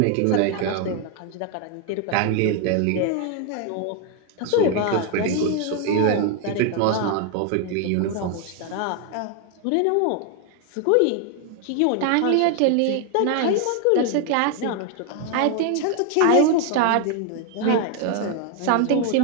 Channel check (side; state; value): both; different; correlation 0.01